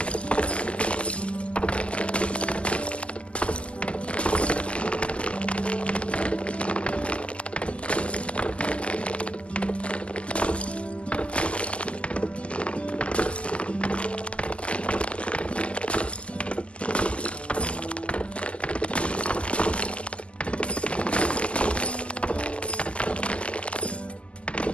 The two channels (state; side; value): late; right; 0.056 ms